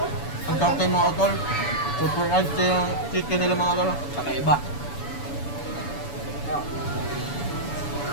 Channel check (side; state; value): right; late; 7.0 ms